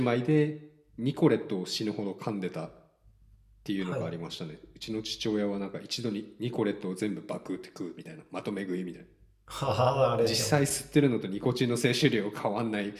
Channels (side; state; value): both; identical; correlation 1.00